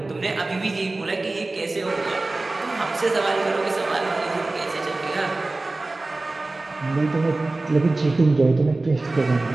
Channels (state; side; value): quieter; left; 3.1 dB